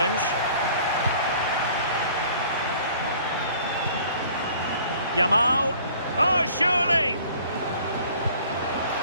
Yamal. Oh, surely!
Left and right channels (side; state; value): both; inverted; correlation -0.52